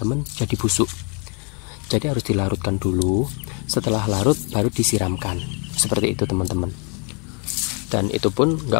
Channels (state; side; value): quieter; right; 35.7 dB